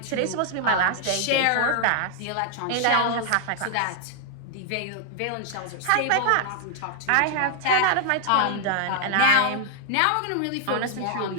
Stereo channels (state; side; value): different; both; correlation 0.00